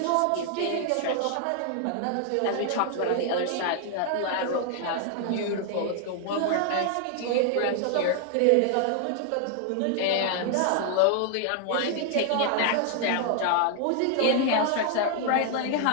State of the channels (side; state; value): both; different; correlation 0.00